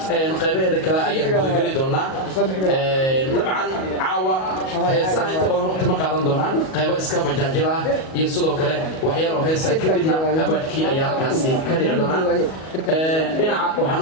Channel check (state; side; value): late; right; 38 ms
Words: qaybaheeda kale ayaan gudagali doonaa dabcan caawa heesaha inta badan waqti ma qaadan doonaan qaybo iska majaajil ah iyo sidoo kale waxyaalo heesa kadibna abaadkii ayaa halkaasi ka dhici doonaa dhinaca waxaan